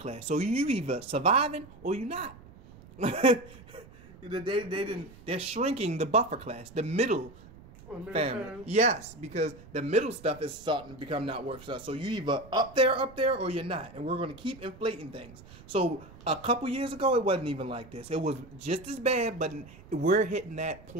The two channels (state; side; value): noise; right; rumble, 20 dB below the sound